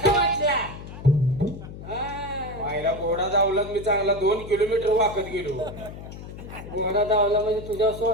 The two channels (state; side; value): noise; left; hum, 12 dB below the sound